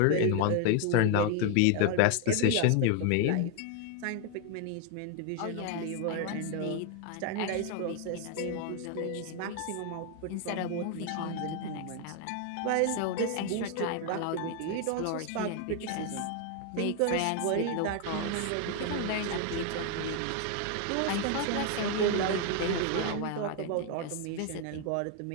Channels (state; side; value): different; both; correlation 0.01